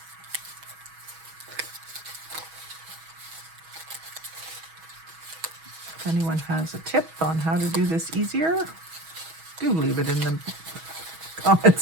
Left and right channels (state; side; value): late; left; 6.2 ms